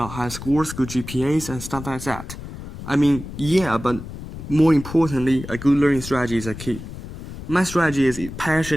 high scores, good GPAs, and stuff like that. I mean, yeah, but more importantly, a good learning strategy is a key. My strategy is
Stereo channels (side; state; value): left; noise; rumble, 11 dB below the sound